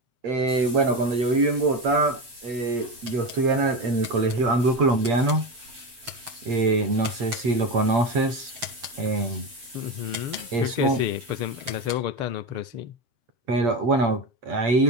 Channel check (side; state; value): left; late; 7.6 ms